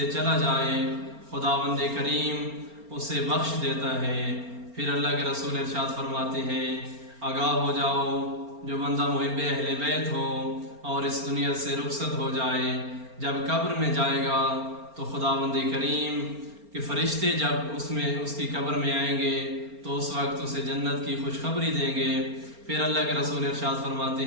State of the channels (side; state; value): left; late; 4.4 ms